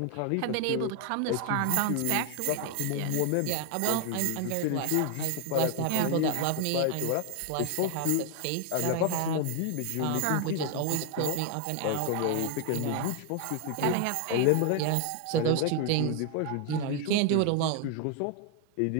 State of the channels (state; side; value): different; both; correlation 0.00